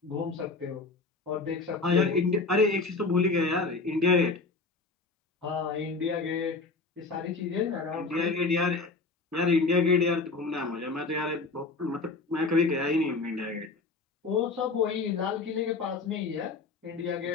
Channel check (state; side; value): quieter; right; 3.9 dB